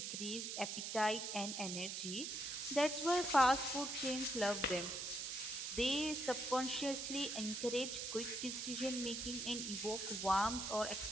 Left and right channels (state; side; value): noise; right; hiss, 4 dB below the sound